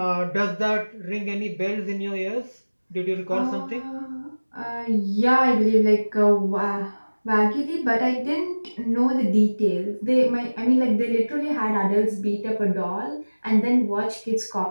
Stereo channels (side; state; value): both; inverted; correlation -1.00